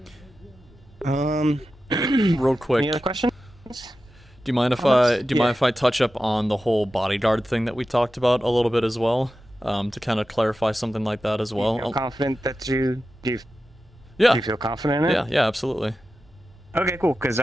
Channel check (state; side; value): normal; both; correlation 0.93